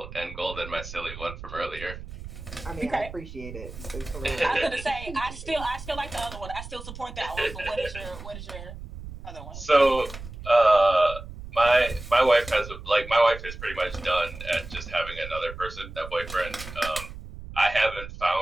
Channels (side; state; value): right; noise; rumble, 12 dB below the sound